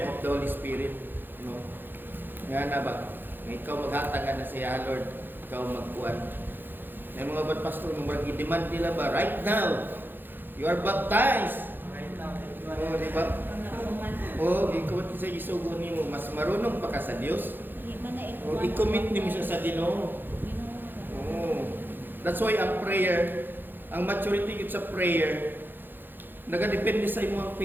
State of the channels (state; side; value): late; left; 0.095 ms